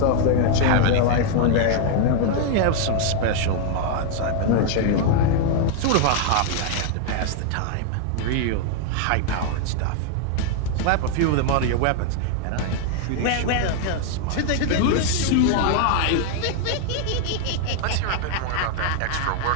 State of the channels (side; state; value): both; different; correlation 0.00